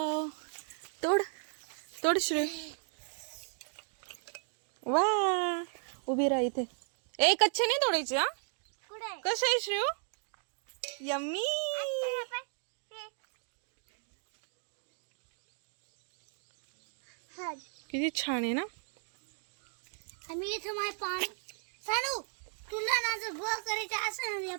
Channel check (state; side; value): silent; left; 54 dB below the other